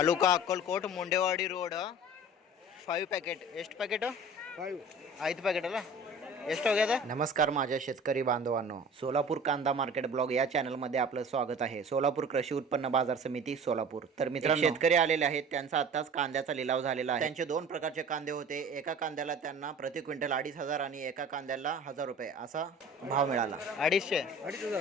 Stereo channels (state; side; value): normal; both; correlation 0.42